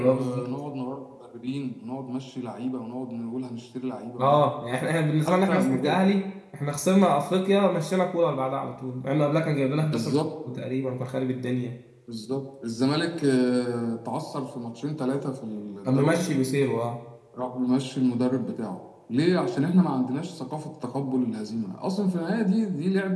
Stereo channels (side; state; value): both; identical; correlation 1.00